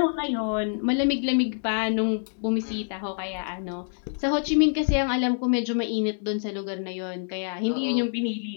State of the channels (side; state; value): right; silent; digital silence